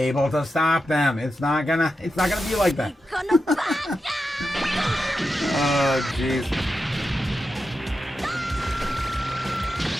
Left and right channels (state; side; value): normal; both; correlation 0.89